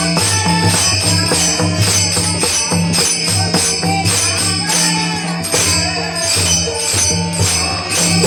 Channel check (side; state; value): both; identical; correlation 1.00